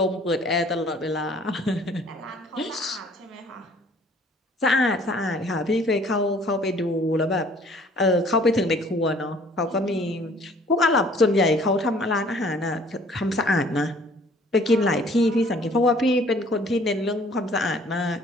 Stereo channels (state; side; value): normal; both; correlation 0.56